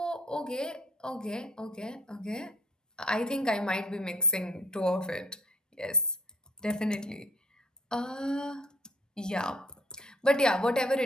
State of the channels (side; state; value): both; normal; correlation 0.57